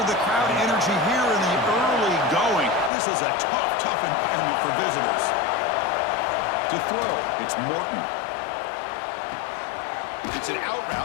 the crowd energy here in the early going. This is a tough environment for visitors. To throw, it's Morton. It's an out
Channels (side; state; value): right; drops out; at 2.9 s